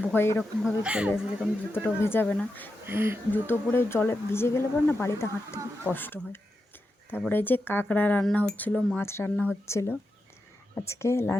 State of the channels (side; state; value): both; normal; correlation 0.88